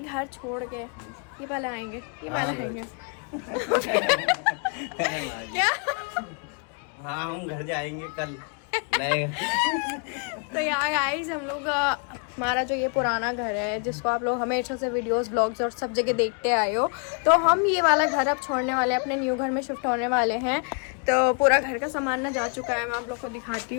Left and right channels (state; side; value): quieter; right; 39.1 dB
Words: छोड़ के ये वाला आएंगे, ये वाला आएंगे क्या? हाँ, हम घर जाएंगे कल। तो यार गाइस हम लोग हमारा जो ये पुराना घर है, जिसको आप लोग हमेशा से वीडियोस ब्लॉग्स और सब जगह देखते आए हो, तो हम ये वाला घर अब छोड़ने वाले हैं, अपने न्यू घर में शिफ्ट होने वाले हैं। तो पूरा घर का सामान ना जा चुका है, मैं आप लोग को दिखाती